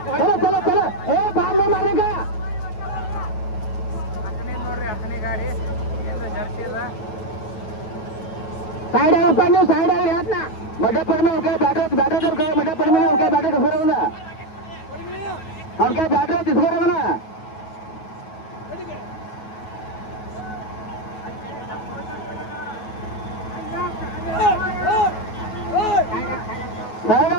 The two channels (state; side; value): late; right; 9.3 ms